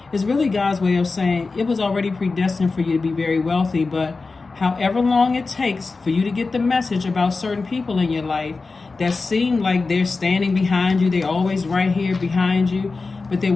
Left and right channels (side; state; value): right; quieter; 4.0 dB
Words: it's really God's way of saying it was already predestined for you to be very wealthy, but however long it takes for you to get the message about certain people in your life that seem like they're standing behind you, they're always right here behind you, but they're